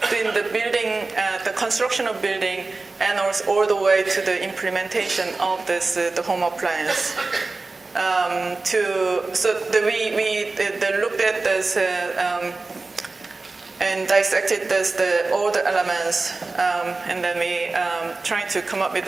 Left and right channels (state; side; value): quieter; left; 3.6 dB